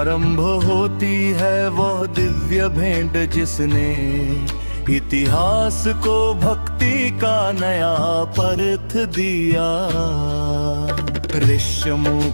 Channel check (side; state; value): both; inverted; correlation -1.00